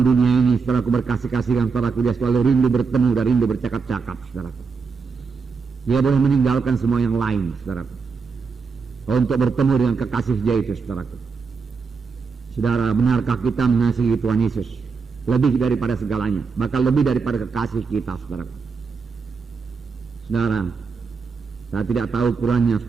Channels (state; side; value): quieter; left; 5.1 dB